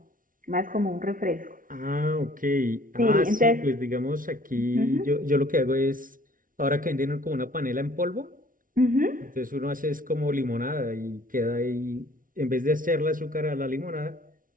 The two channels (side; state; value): left; late; 0.39 ms